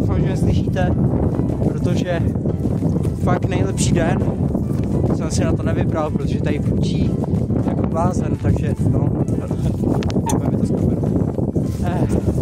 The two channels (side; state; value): both; identical; correlation 1.00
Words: že mě slyšíte, protože fakt nejlepší den jsem si na to nevybral, protože tady průčí jako blázen, takže no, mi to z kameru.